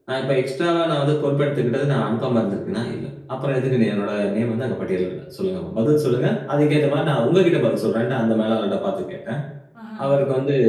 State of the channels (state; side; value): identical; both; correlation 1.00